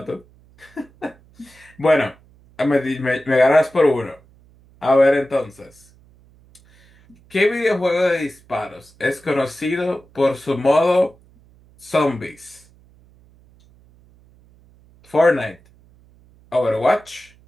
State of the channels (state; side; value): noise; right; hum, 29 dB below the sound